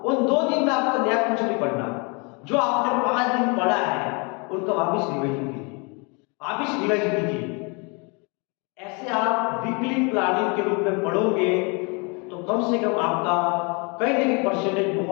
उन 2 दिन में आपको नया कुछ नहीं पढ़ना, जो आपने 5 दिन पढ़ा है उनका वापिस रिवाइज कीजिए। ऐसे आप वीकली प्लानिंग के रूप में पढ़ोगे तो कम से कम आपका कई ना कई परसेंटेज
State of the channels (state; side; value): quieter; right; 31.9 dB